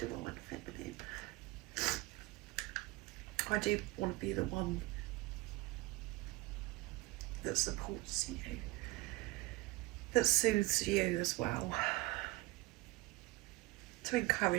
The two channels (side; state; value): left; quieter; 21.2 dB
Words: Feminine. I do want to be the one that supports you, that soothes you as well, to